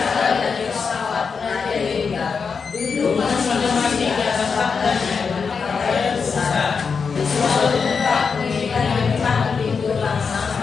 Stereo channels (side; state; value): right; quieter; 5.5 dB